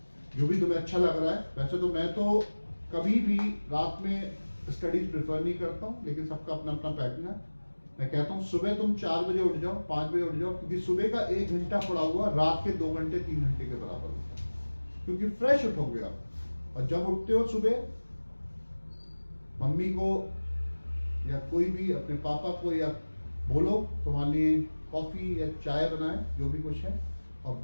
जो भी तुम्हें अच्छा लग रहा है। वैसे तो मैं तो कभी भी रात में स्टडीज प्रेफर नहीं करता हूँ, लेकिन सबका अपना अपना पैटर्न है। मैं कहता हूँ सुबह तुम 4 बजे उठ जाओ, 5 बजे उठ जाओ, क्योंकि सुबह का 1 घंटा पड़ा हुआ रात के 2 घंटे 3 घंटे के बराबर होता है, क्योंकि फ्रेश उठोगे आप। और जब उठते हो सुबह, मम्मी को या कोई भी अपने पापा को या बोलो तुम्हारे लिए कॉफी या चाय बनाए, जो भी कुछ है, और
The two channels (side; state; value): both; inverted; correlation -1.00